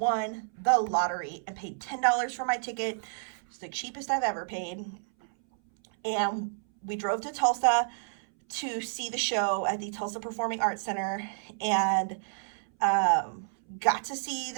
the lottery and paid $10 for my ticket. It's the cheapest I've ever paid. And we drove to Tulsa to see the show at the Tulsa Performing Arts Center, and got to see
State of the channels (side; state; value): left; silent; 58 dB below the other